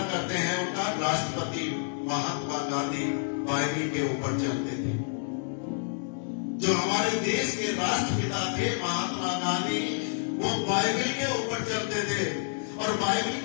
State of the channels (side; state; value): right; silent; digital silence